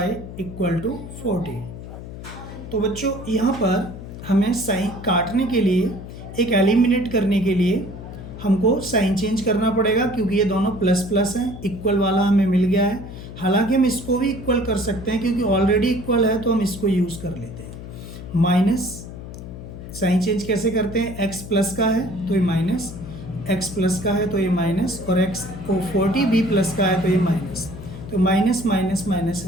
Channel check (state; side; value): noise; left; hum, 12 dB below the sound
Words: equal to 40। तो बच्चों, यहाँ पर हमें साइन काटने के लिए, एक एलिमिनेट करने के लिए हमको साइन चेंज करना पड़ेगा, क्योंकि ये दोनों प्लस प्लस हैं, इक्वल वाला हमें मिल गया है। हालांकि हम इसको भी इक्वल कर सकते हैं क्योंकि ऑलरेडी इक्वल है, तो हम इसको यूज़ कर लेते हैं। माइनस साइन चेंज कैसे करते हैं, एक्स प्लस का है तो ये माइनस, एक्स प्लस का है तो ये माइनस, और एक्स को 40 बी प्लस का है तो ये माइनस, तो माइनस माइनस माइनस